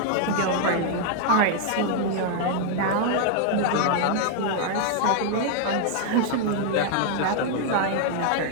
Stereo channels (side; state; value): both; different; correlation 0.00